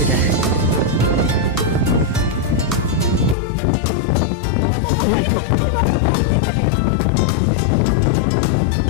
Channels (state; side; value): drops out; right; at 3.4 s